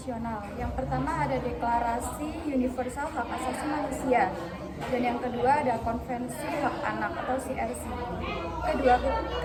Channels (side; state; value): both; identical; correlation 1.00